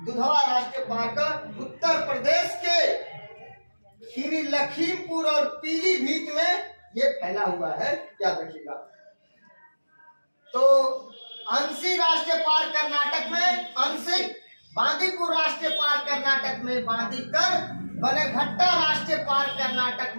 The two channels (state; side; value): inverted; both; correlation -1.00